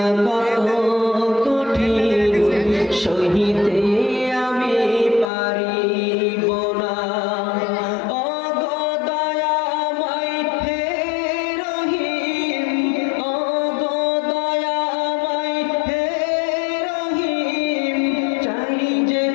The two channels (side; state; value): right; drops out; at 5.3 s